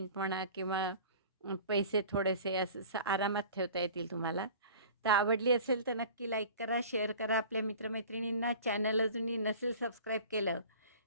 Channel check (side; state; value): both; inverted; correlation -0.42